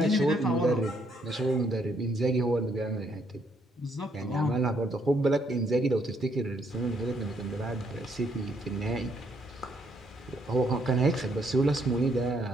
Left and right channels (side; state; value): both; normal; correlation 0.71